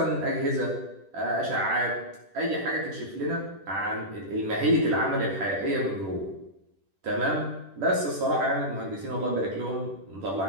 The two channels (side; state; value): left; late; 10 ms